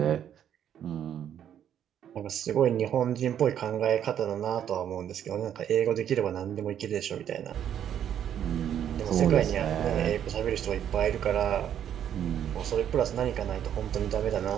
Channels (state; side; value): quieter; left; 9.8 dB